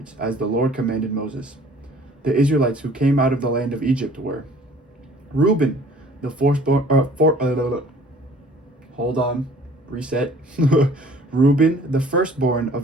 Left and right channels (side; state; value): both; normal; correlation 0.52